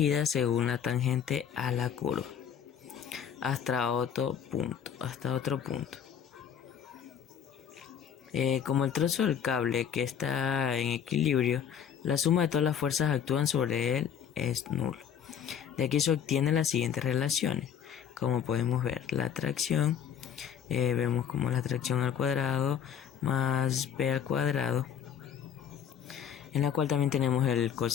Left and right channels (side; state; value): right; quieter; 8.4 dB